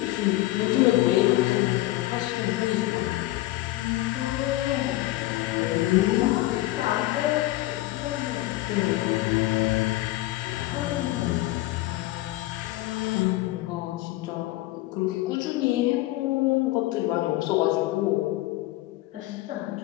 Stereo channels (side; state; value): right; quieter; 17.5 dB